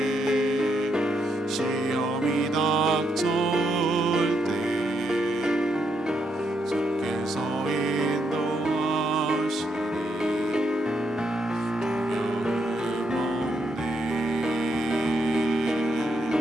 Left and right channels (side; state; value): both; normal; correlation 0.78